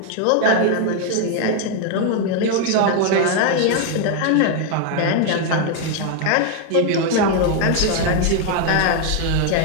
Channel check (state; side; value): different; both; correlation 0.01